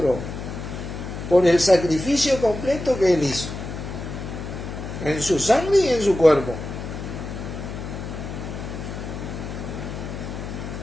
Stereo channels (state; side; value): noise; left; hum, 8 dB below the sound